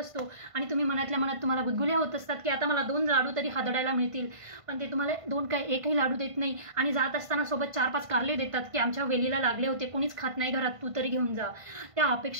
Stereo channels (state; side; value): late; left; 1.5 ms